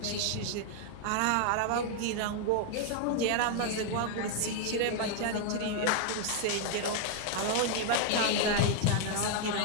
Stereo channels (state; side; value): different; both; correlation 0.00